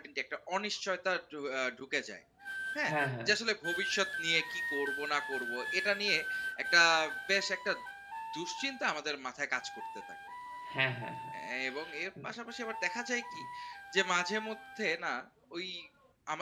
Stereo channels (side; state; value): both; identical; correlation 1.00